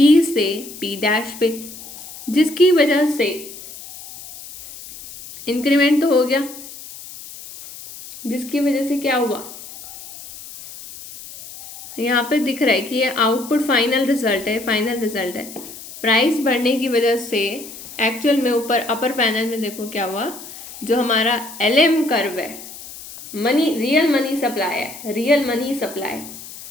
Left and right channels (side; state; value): left; noise; hiss, 15 dB below the sound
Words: से पी डैश पे, जिसकी वजह से इंक्रीमेंट तो हो गया, जिसकी वजह से क्या हुआ, यहाँ पे दिख रहा है कि ये आउटपुट फाइनल रिजल्ट है, फाइनल रिजल्ट है। प्राइस बढ़ने की वजह से एक्चुअल में ऊपर अपर पैनल में देखो क्या हुआ, जो हमारा एलएम कर्व है, मनी, रियल मनी सप्लाई है, रियल मनी सप्लाई